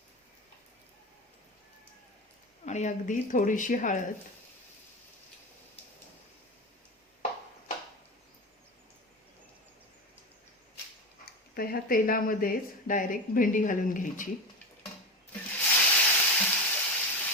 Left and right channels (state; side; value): normal; both; correlation 0.22